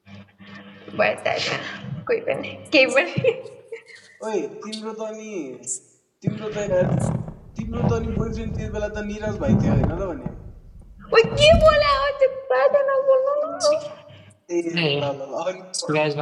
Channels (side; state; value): both; identical; correlation 1.00